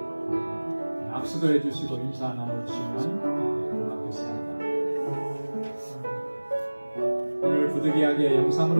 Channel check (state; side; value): inverted; both; correlation -1.00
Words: 악수도 해주시고 인사 나눠주시면 고맙겠습니다. 오늘 부득이하게